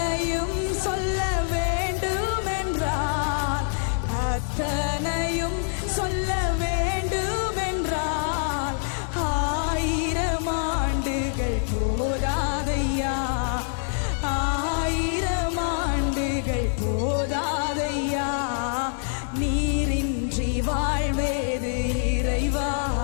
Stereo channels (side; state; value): right; silent; digital silence